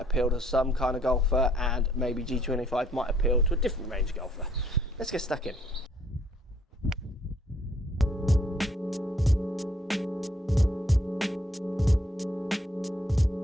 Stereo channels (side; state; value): both; normal; correlation 0.64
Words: appeal to some kind of golfer and maybe G25 might appeal to a different range golfer. Let's get stuck in.